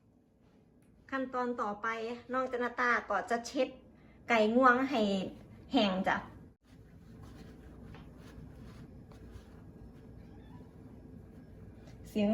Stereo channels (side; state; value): both; identical; correlation 1.00